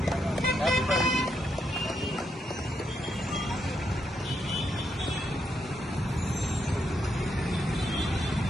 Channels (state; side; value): normal; both; correlation 0.80